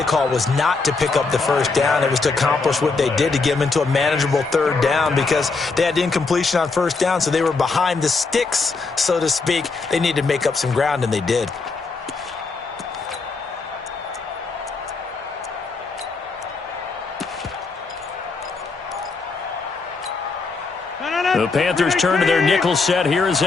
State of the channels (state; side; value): quieter; right; 4.2 dB